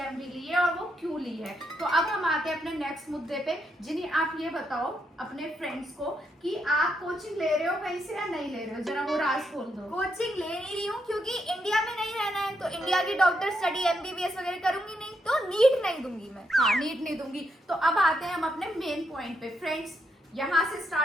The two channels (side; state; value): both; normal; correlation 0.79